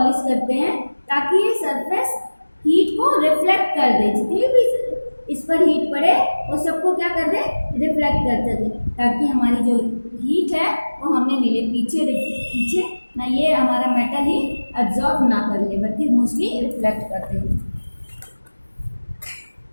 करते हैं ताकि ये सरफेस हीट को रिफ्लेक्ट कर दे, जितनी भी इस पर हीट पड़े वो सबको क्या कर दे, रिफ्लेक्ट कर दे, ताकि हमारी जो हीट है वो हमें मिले, पीछे ना ये हमारा मेटल ही एब्जॉर्ब ना कर ले बल्कि मोस्टली रिफ्लेक्ट कर दे।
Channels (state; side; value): inverted; both; correlation -1.00